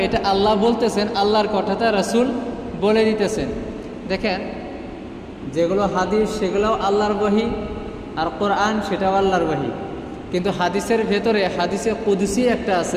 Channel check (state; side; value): identical; both; correlation 1.00